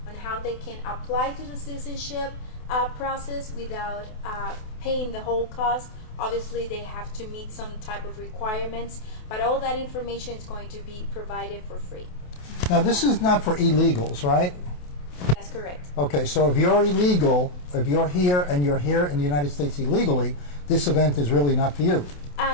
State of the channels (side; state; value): right; late; 28 ms